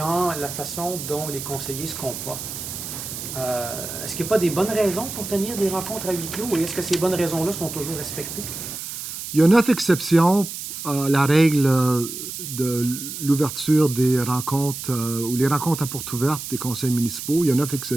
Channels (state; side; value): noise; right; hiss, 8 dB below the sound